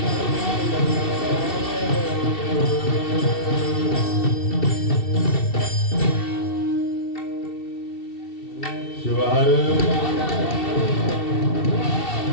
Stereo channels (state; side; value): late; right; 2.7 ms